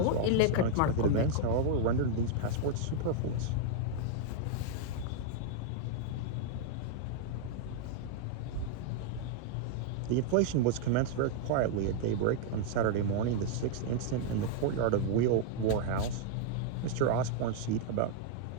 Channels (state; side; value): different; both; correlation 0.00